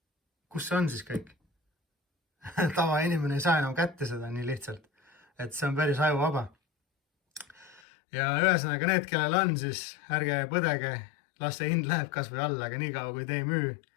Kus see on siis kõik? Tavainimene ei saa enam kätte seda nii lihtsalt, et see on päris ajuvaba. Ja ühesõnaga need, kellel on, siis ärge põdege, las see hind läheb kas või alla, aga nii kaua kui te ei müü,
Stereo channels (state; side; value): drops out; right; at 7.8 s